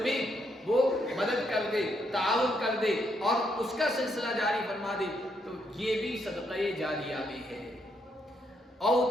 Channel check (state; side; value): normal; both; correlation 0.76